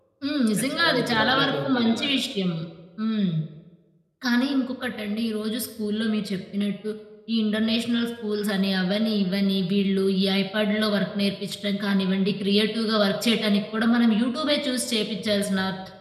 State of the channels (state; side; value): identical; both; correlation 1.00